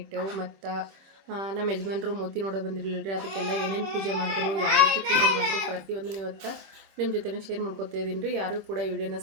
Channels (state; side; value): late; left; 26 ms